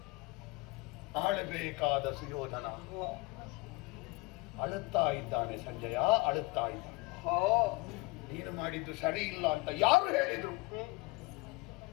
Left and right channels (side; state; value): right; quieter; 23.9 dB